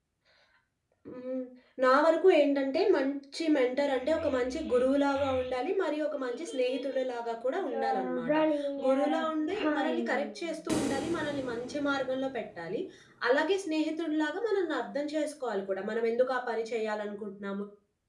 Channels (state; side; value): identical; both; correlation 1.00